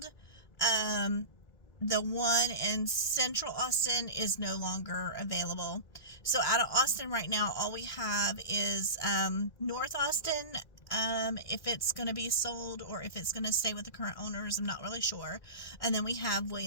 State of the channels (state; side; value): late; right; 1.9 ms